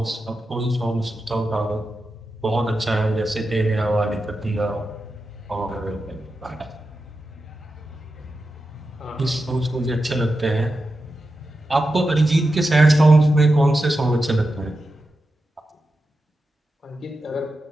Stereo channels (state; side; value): normal; both; correlation 0.90